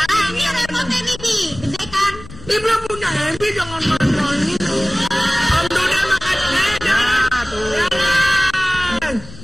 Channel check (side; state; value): left; noise; rumble, 16 dB below the sound